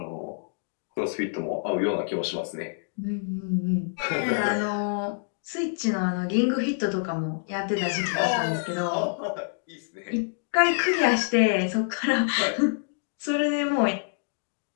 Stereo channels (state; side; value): silent; right; digital silence